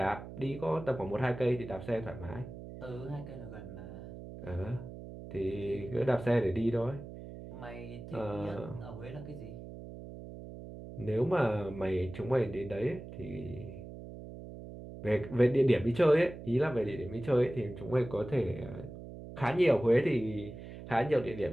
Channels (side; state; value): right; noise; hum, 12 dB below the sound